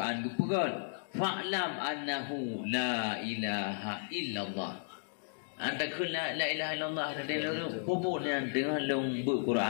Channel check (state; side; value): silent; right; digital silence